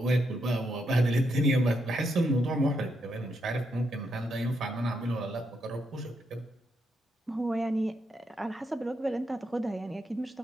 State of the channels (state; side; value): normal; both; correlation 0.80